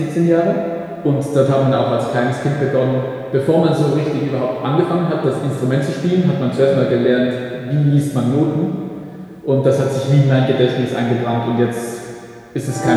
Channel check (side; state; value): both; identical; correlation 1.00